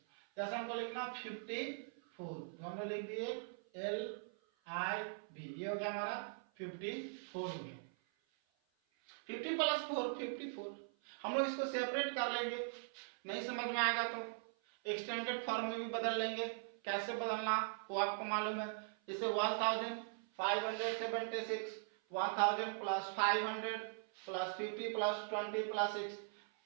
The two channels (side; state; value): left; silent; 50 dB below the other